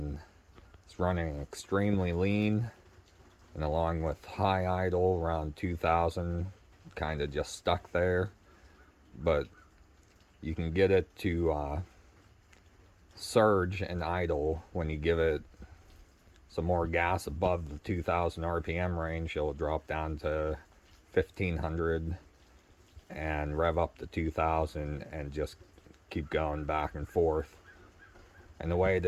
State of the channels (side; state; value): both; identical; correlation 1.00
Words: it's running extremely lean, and along with high idle around 2000, kind of just stuck there. But you can get it to surge and idle when you give it some more gas above the 2000 RPM range. It'll drop down to 1500 and rev up to 2000 and just keep going back and forth. And the way